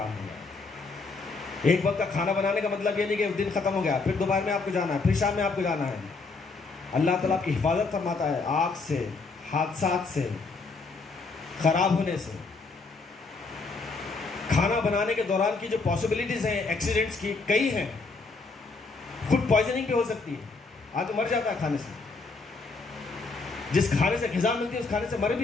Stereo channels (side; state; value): right; quieter; 4.0 dB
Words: ہوا۔ ایک وقت کا کھانا بنانے کا مطلب یہ نہیں کہ دن ختم ہو گیا، پھر دوپہر میں آپ کو جانا ہے، پھر شام میں آپ کو جانا ہے۔ اللہ تعالیٰ کی حفاظت فرماتا ہے آگ سے، حادثات سے، خراب ہونے سے۔ کھانا بنانے کے دوران کی جو پاسبلٹیز ہیں ایکسیڈنٹس کی کئی ہیں، فوڈ پوائزننگ بھی ہو سکتی ہے، آدمی مر جاتا ہے کھانے سے، جس کھانے سے غذا ملتی ہے اس کھانے سے مر